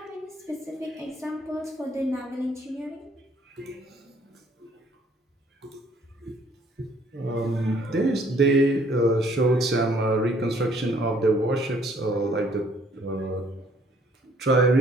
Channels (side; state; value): both; normal; correlation 0.62